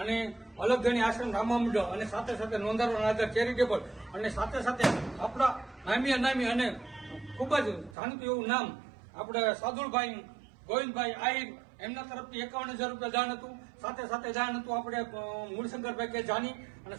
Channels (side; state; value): left; drops out; at 8.0 s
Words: અલગ ગણી આશ્રમ રામા મંડળ અને સાથે સાથે નોંધારવાના આધાર ચેરિટેબલ અને સાથે સાથે આપણા નામી અનામી અને ખૂબ જ જાણીતું એવું નામ આપણે સાદુલભાઈ ગોવિંદભાઈ આહિર એમના તરફથી 51,000 રૂપિયા દાન હતું. સાથે સાથે દાન હતું આપણે મૂળશંકરભાઈ કે જાની અને